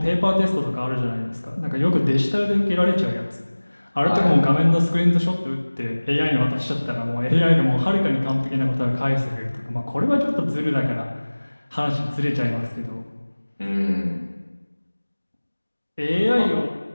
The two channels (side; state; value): both; inverted; correlation -1.00